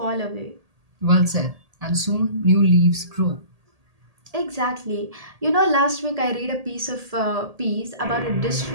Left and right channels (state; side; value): late; left; 1.8 ms